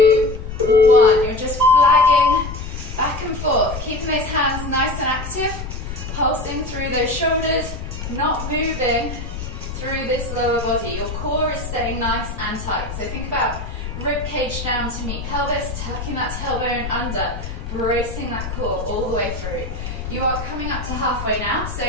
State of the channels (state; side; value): noise; left; rumble, 7 dB below the sound